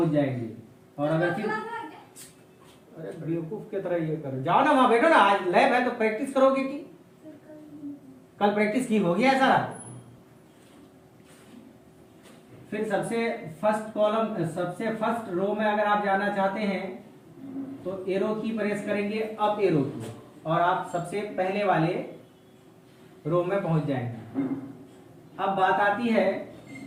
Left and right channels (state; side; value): identical; both; correlation 1.00